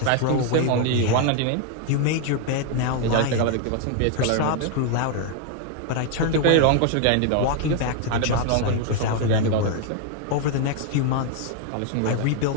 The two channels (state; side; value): different; both; correlation 0.00